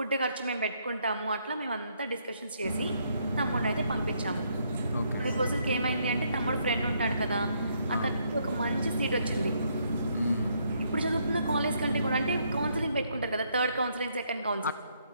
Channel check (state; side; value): inverted; both; correlation -0.73